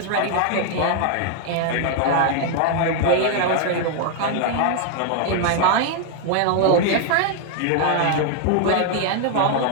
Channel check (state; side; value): different; both; correlation 0.00